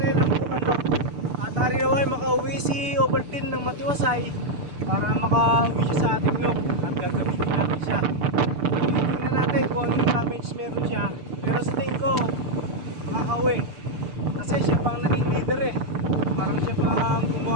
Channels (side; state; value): left; late; 6.8 ms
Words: ang Pumandok. At hari naway makauwi si Ovaltine ng matiwasay para makauwi siya sa ating loob at gagamitin natin siya. Tingnan natin kung anong damage meron siya. Pero sa tingin ko, makakauwi. Kasi siya pang naging leader eh. Parang siya pang